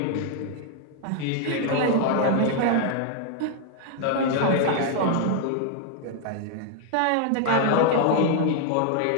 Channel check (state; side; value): different; both; correlation 0.00